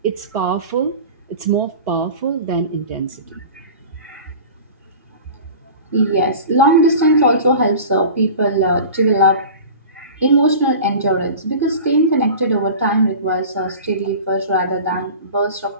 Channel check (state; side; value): inverted; both; correlation -0.37